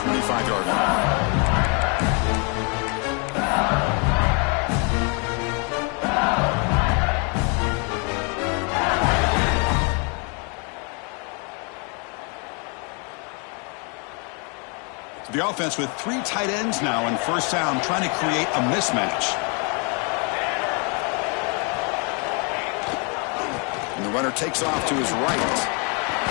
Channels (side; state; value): right; quieter; 35.1 dB